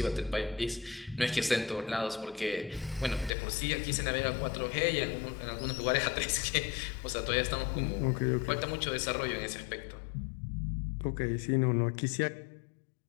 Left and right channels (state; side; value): drops out; right; at 3.3 s